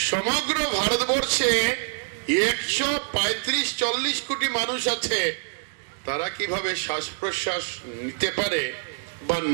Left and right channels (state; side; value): silent; left; digital silence